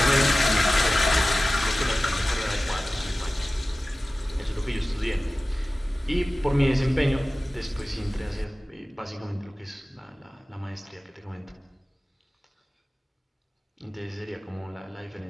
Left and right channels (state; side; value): normal; both; correlation 0.96